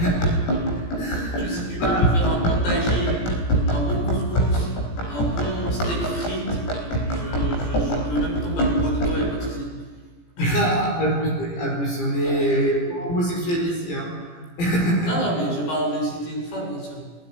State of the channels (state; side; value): late; right; 17 ms